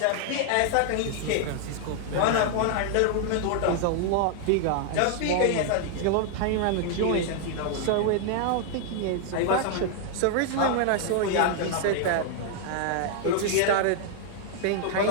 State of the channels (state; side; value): different; both; correlation -0.01